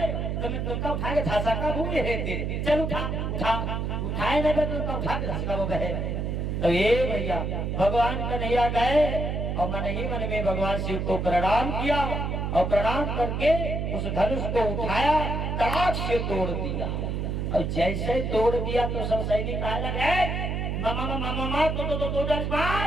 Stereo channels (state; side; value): noise; right; hum, 1 dB below the sound